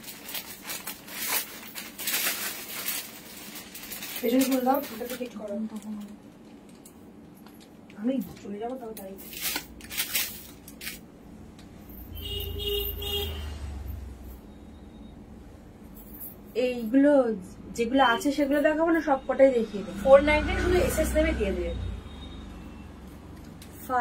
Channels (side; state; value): both; identical; correlation 1.00